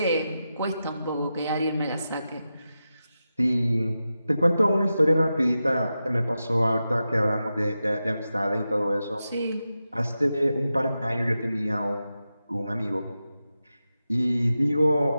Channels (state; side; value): inverted; both; correlation -0.91